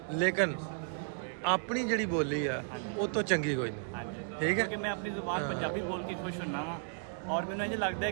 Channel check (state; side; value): silent; left; 55 dB below the other